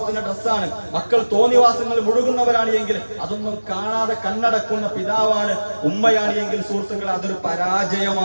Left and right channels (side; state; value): both; inverted; correlation -1.00